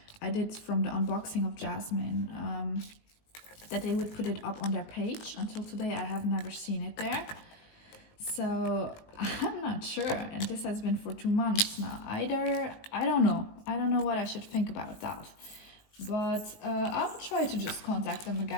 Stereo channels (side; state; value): right; late; 19 ms